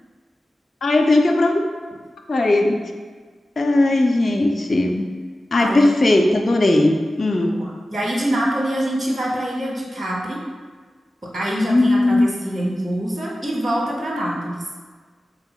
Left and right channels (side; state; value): both; normal; correlation 0.95